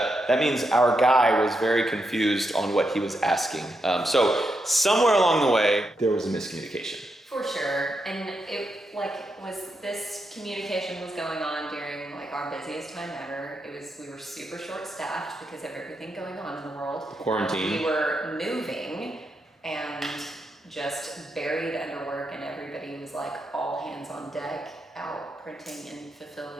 that means our guy was very confused on what he was asking. So somewhere along the way, there was a miscommunication. For sure. And it was this communication was going on during like our busiest time ever. We were super short staffed because of everything going on in the world. Quarantine. We were moving and just buried under work, and everybody was like all hands on deck out printing and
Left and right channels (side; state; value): both; normal; correlation 0.83